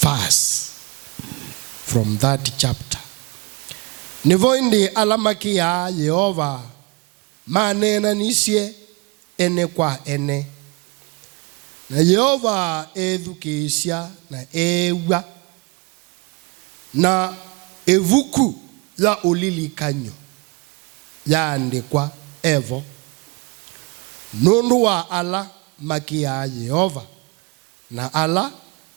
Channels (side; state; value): left; quieter; 27.6 dB